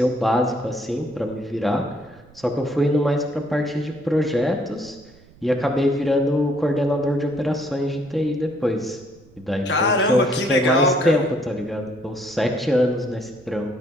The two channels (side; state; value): right; noise; rumble, 25 dB below the sound